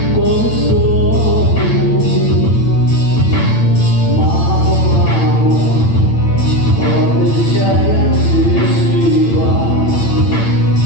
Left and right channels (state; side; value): late; right; 8.9 ms